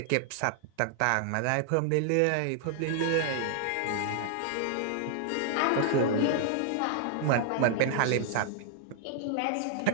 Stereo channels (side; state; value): both; different; correlation 0.00